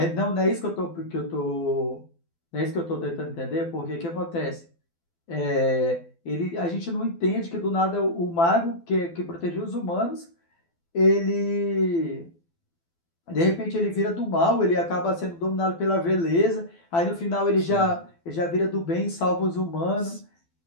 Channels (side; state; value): right; late; 12 ms